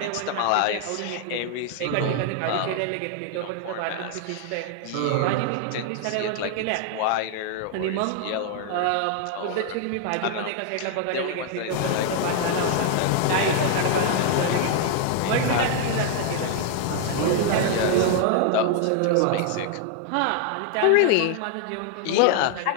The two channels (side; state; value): both; different; correlation 0.00